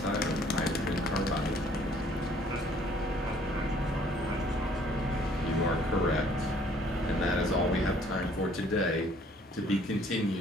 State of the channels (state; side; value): normal; both; correlation 0.60